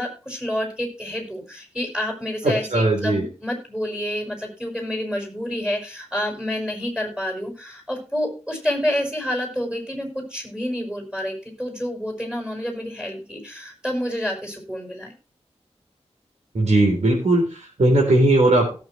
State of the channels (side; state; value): both; normal; correlation 0.76